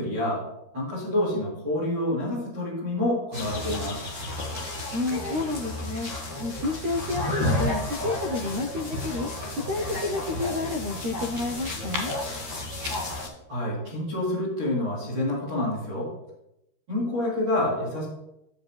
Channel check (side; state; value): left; late; 13 ms